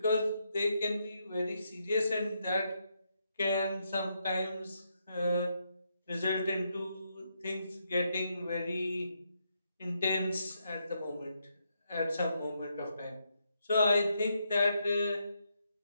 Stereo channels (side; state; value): both; inverted; correlation -0.80